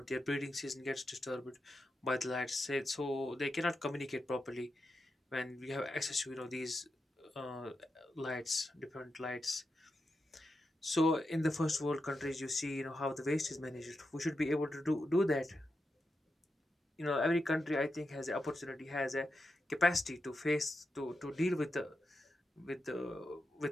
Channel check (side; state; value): both; normal; correlation 0.88